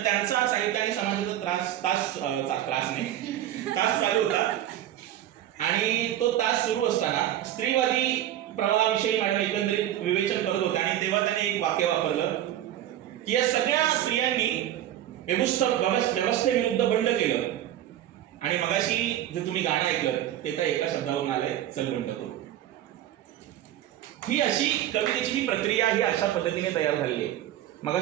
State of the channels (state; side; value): quieter; left; 12.3 dB